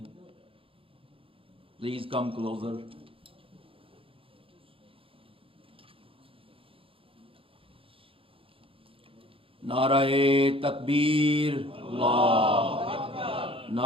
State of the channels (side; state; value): left; late; 0.26 ms